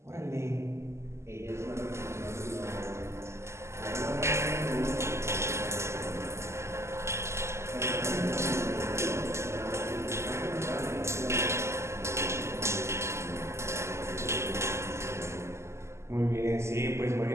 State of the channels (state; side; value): late; left; 0.13 ms